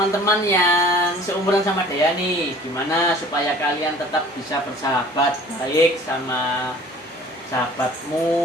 yang seumuran sama Dea nih, gimana supaya kalian tetap bisa bersahabat baik sama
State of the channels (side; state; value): both; normal; correlation 0.48